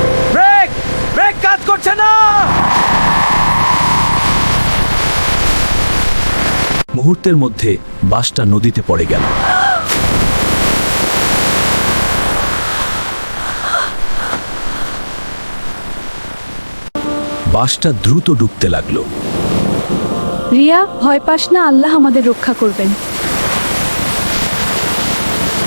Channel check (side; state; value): both; inverted; correlation -1.00